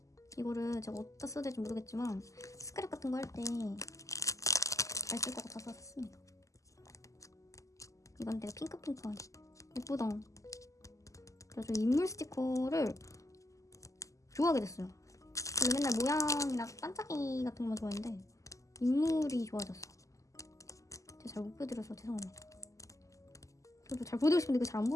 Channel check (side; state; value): right; late; 0.16 ms